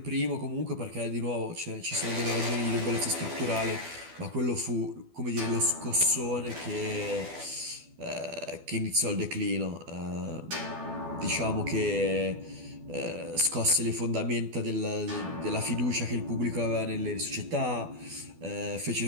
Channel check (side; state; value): left; late; 12 ms